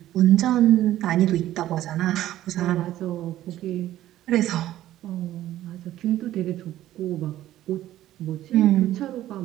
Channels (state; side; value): quieter; left; 13.6 dB